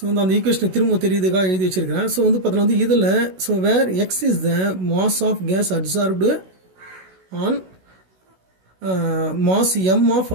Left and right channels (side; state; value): left; late; 16 ms